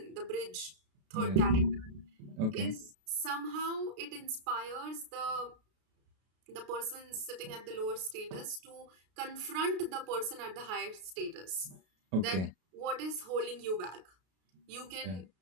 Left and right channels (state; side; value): late; left; 32 ms